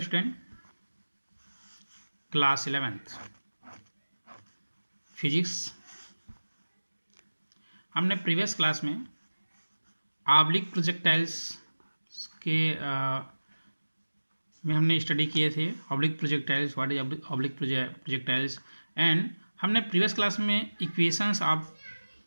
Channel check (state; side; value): inverted; both; correlation -1.00